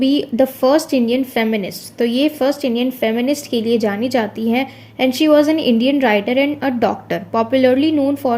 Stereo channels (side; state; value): both; identical; correlation 1.00